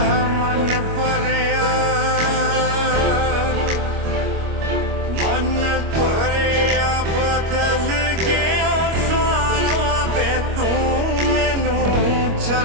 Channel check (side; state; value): left; late; 25 ms